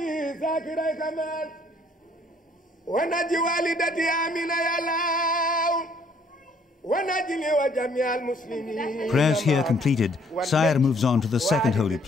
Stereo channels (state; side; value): normal; both; correlation 0.63